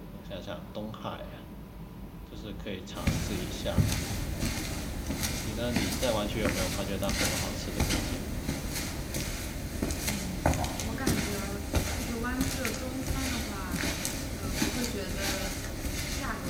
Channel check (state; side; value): identical; both; correlation 1.00